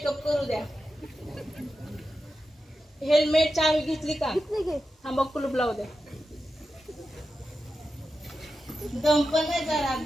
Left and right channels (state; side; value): normal; both; correlation 0.90